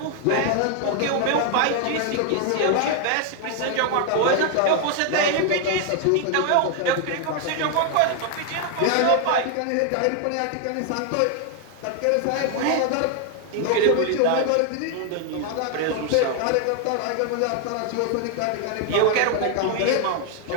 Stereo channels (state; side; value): different; both; correlation 0.00